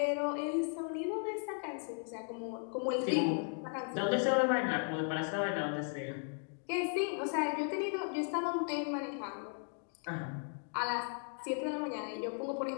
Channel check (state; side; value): silent; right; 54 dB below the other